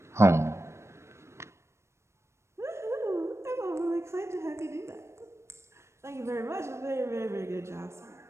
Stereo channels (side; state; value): left; late; 0.13 ms